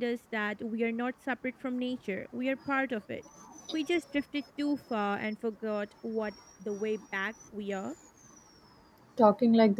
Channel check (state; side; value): identical; both; correlation 1.00